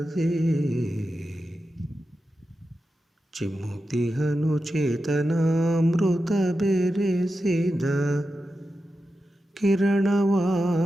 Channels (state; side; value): normal; both; correlation 0.90